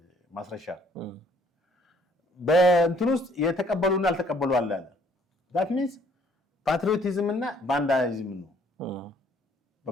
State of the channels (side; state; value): both; normal; correlation 0.62